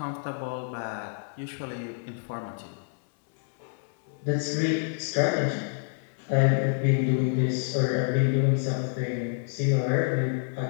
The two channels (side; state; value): right; silent; 60 dB below the other